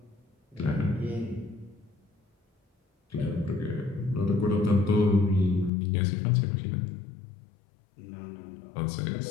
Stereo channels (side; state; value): right; drops out; at 5.7 s